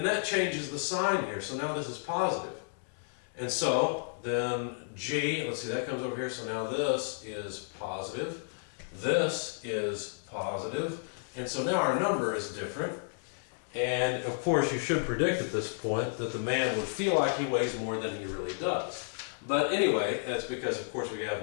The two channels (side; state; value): right; silent; digital silence